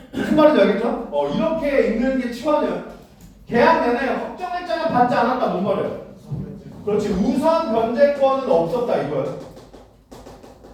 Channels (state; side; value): identical; both; correlation 1.00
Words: 무슨 말인지 알겠죠? 이렇게 읽는 게 치환이야. 계약 내내 확정일자는 받지 않았다. 뭔 말이에요? 그렇지. 우선 변제권은 없었다 이거야.